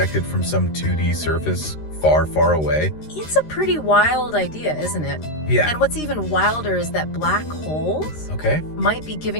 from some 2D surface far, far away? It's a pretty wild idea, isn't it? Yeah. And what's even wilder is that black holes Okay. might be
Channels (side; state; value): right; late; 13 ms